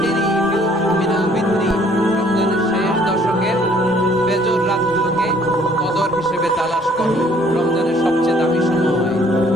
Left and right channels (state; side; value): normal; both; correlation 0.60